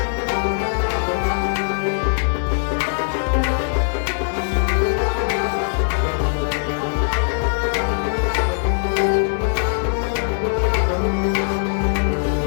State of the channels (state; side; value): silent; right; 65 dB below the other